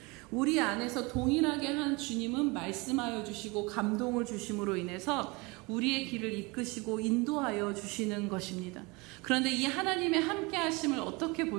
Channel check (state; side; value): quieter; left; 26.2 dB